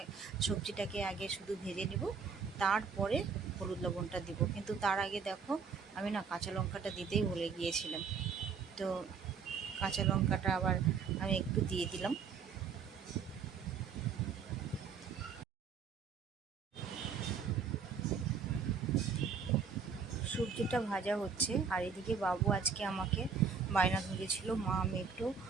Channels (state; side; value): quieter; left; 5.9 dB